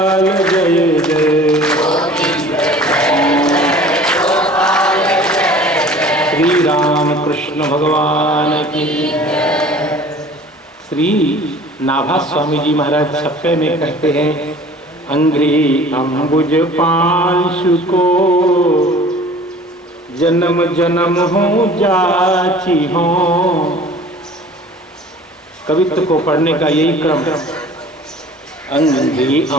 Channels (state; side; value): normal; both; correlation 0.46